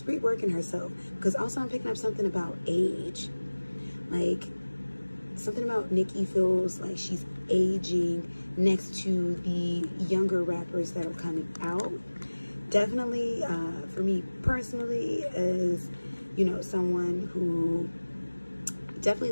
reworking herself. Because also I'm picking up something about age. Like, something about Nicki feels like she's aging next to the younger rappers that are coming out. Definitely, for me personally, as, you know, someone who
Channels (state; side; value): inverted; both; correlation -1.00